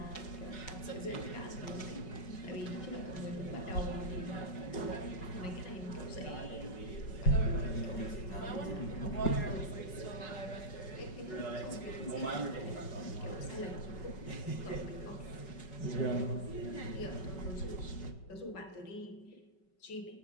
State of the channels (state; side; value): late; right; 5.3 ms